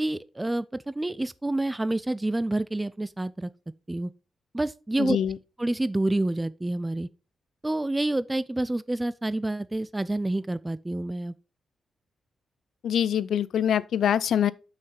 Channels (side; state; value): both; normal; correlation 0.87